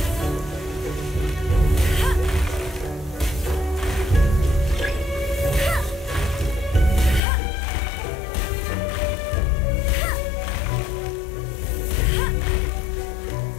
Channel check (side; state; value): right; drops out; at 7.2 s